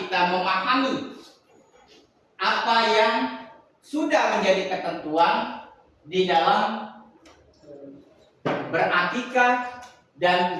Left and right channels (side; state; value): both; identical; correlation 1.00